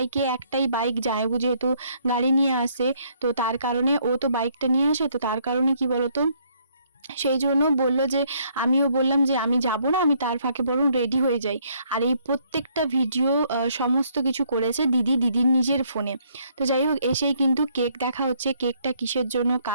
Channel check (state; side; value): inverted; both; correlation -0.67